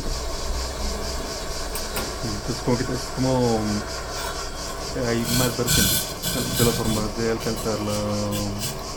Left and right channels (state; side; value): identical; both; correlation 1.00